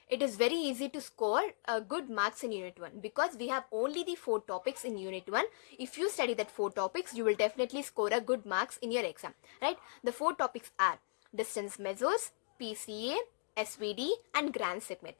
it is very easy to score good marks in Unit 1 because we have only the 4 topics in Unit 1. If you study that 4 topics, you will definitely score a good marks in your exam, right? The 4 topics are distance measures, PCA, SVD and grand segment.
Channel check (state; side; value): silent; right; digital silence